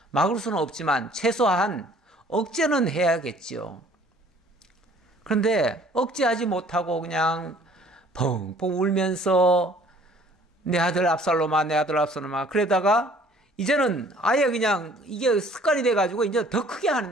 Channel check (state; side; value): normal; both; correlation 0.55